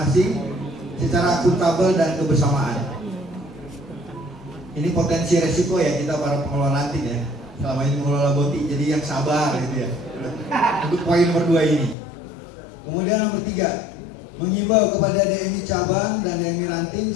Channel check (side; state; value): right; drops out; at 12.0 s